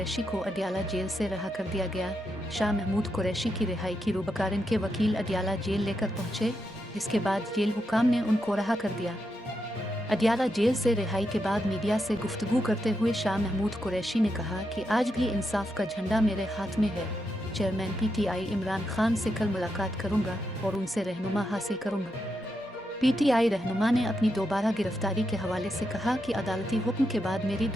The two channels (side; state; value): both; normal; correlation 0.84